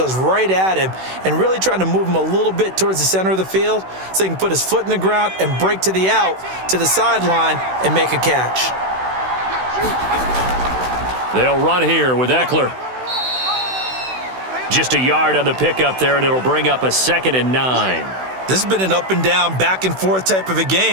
right at him and really trying to move him a little bit towards the center of the field so he can put his foot in the ground and break to the out, to the sideline, and make a catch. They'll run here with Eckler. Just a yard on the pickup there, and it'll bring up a 2nd and 9. This has been an up and down, back and forth type of a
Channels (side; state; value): left; late; 16 ms